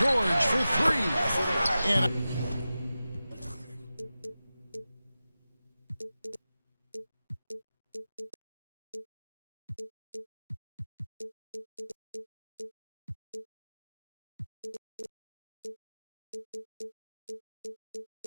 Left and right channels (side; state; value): both; inverted; correlation -0.94